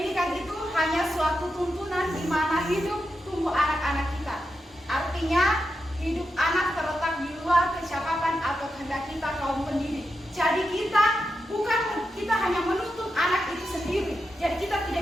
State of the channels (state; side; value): normal; both; correlation 0.87